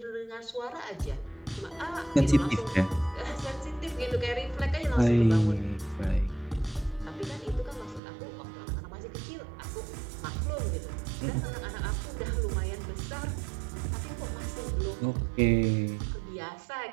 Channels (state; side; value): drops out; left; at 8.0 s